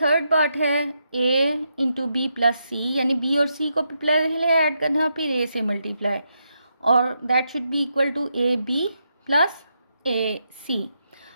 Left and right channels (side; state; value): both; inverted; correlation -0.82